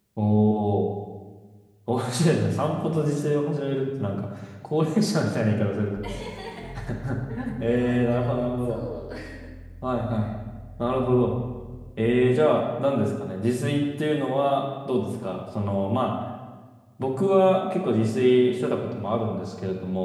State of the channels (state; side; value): identical; both; correlation 1.00